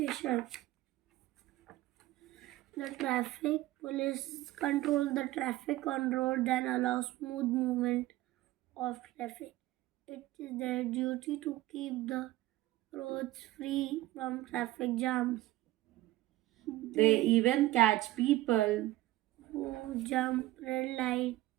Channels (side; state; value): left; quieter; 16.9 dB